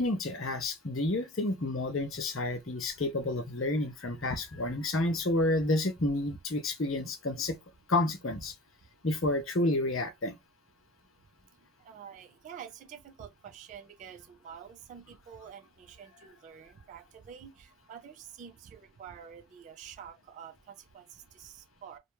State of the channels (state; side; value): normal; both; correlation 0.36